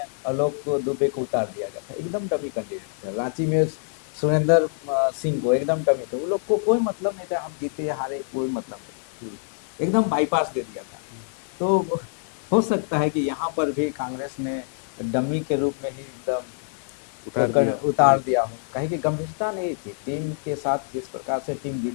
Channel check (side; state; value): right; silent; digital silence